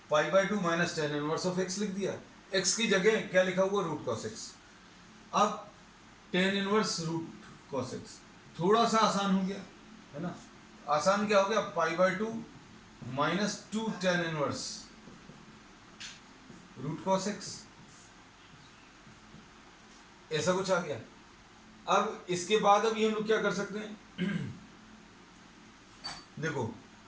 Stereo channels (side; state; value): both; identical; correlation 1.00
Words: pi by 2 minus tan inverse of x लिख दिया। x की जगह क्या लिखा हुआ, रूट cos x। अब tan inverse root cos x थोड़ा सा आसान हो गया है ना। आसान क्या हो गया, pi by 2 minus 2 tan inverse root cos x, ऐसा कुछ आ गया। अब इसके बाद अभी हम लोग क्या कर सकते हैं देखो